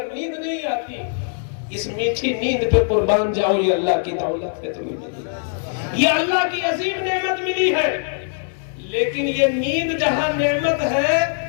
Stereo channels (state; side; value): silent; right; 63 dB below the other